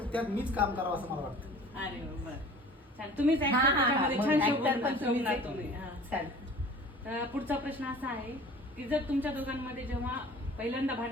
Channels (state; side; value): normal; both; correlation 0.45